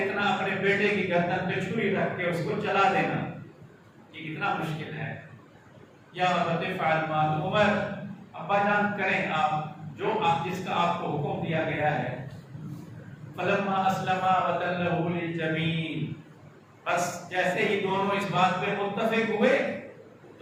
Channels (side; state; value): both; identical; correlation 1.00